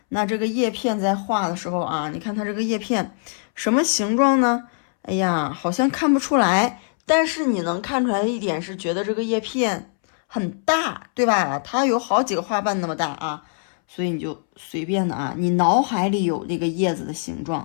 那这个叶片在画的时候啊，你看它这个叶片什么形状呢？哎呀，好像看不出来。但是你能看出来的一点是，觉得这个叶片很大，对吧？它有好几个花瓣那么大啊，所以你就随便的啊，你脑海里有这个叶子的形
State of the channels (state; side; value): silent; right; 64 dB below the other